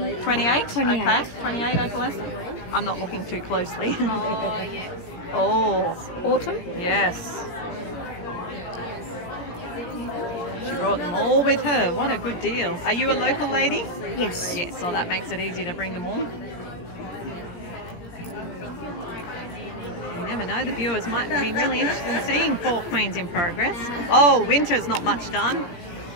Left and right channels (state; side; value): late; right; 17 ms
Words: 28. Okay, 28 opalescent. I'm not looking too closely. Oh, yes. Oh. Autumn? Yes. She brought them all with her. What a good deal. Are you a local lady? Yes. Yes, so that makes it easy to bring them all. You never know, the viewers might be really interested in seeing 4 queens in progress. Oh, winter's not much done.